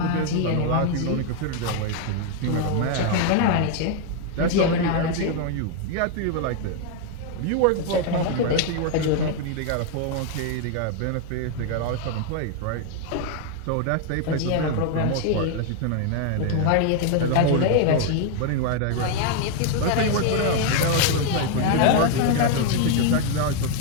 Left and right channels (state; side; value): different; both; correlation 0.00